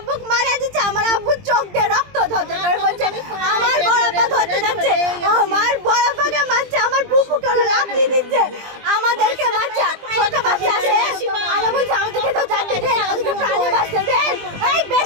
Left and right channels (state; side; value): late; left; 20 ms